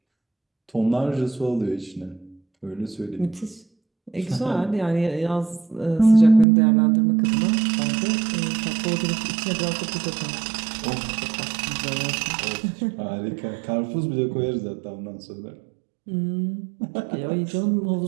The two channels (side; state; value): left; drops out; at 6.5 s